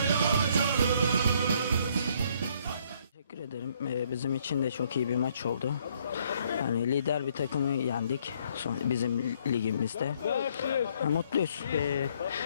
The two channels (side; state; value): both; inverted; correlation -0.66